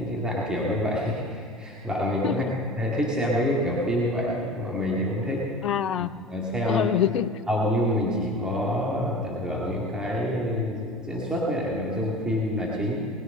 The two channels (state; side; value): normal; both; correlation 0.38